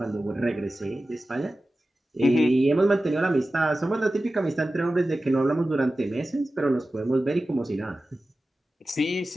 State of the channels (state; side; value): normal; both; correlation 0.95